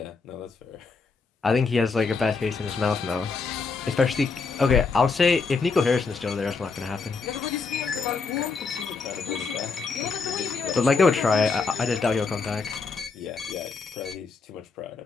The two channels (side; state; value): right; quieter; 4.6 dB